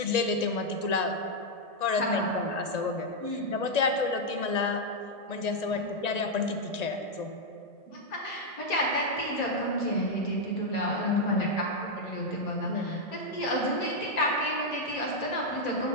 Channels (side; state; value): right; late; 1.9 ms